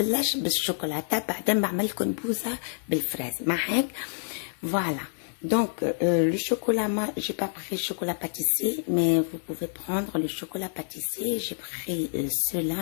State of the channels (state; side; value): silent; right; digital silence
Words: بالشوكولاتة بعدين بعمل لكم بوزة بالفراise. معك؟ Voilà. Donc, le chocolat, moi, j'ai pas pris chocolat pâtissier, mais vous pouvez prendre le chocolat pâtissier. J'ai pris cela.